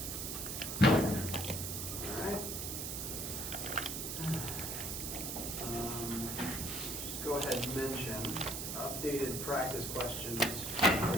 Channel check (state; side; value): noise; right; hiss, 4 dB below the sound